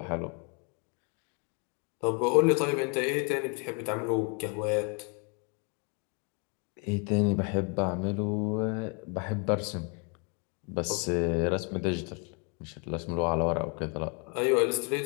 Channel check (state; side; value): quieter; right; 35.6 dB